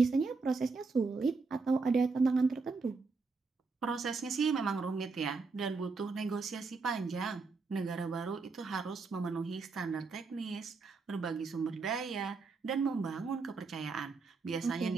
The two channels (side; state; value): left; quieter; 4.3 dB